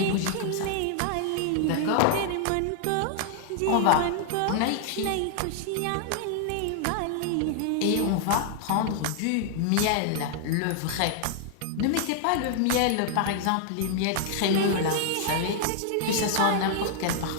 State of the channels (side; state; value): both; different; correlation 0.00